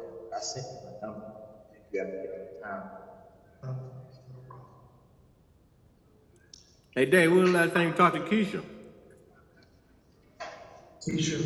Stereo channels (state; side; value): identical; both; correlation 1.00